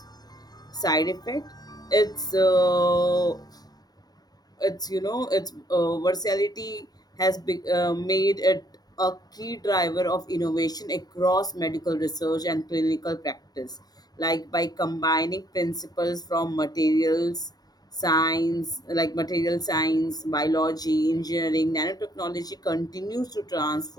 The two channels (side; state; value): right; late; 0.19 ms